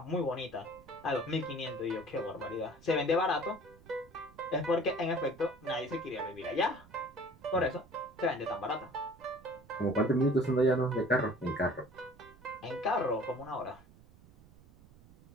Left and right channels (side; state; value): right; noise; rumble, 24 dB below the sound